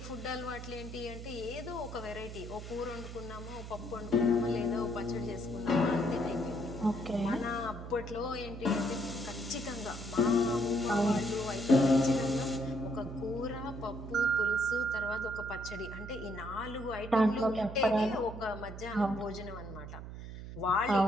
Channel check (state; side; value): noise; right; hum, 10 dB below the sound